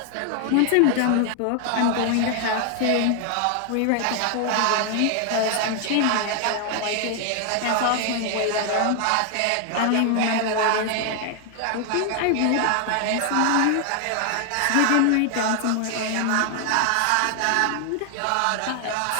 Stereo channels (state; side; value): different; both; correlation 0.00